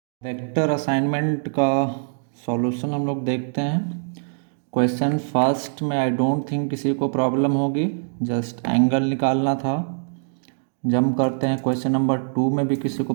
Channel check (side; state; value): left; silent; digital silence